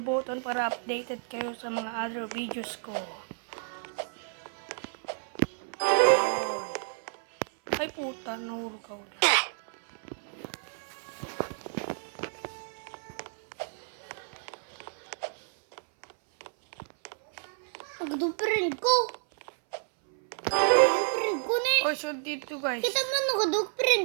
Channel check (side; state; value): left; silent; 58 dB below the other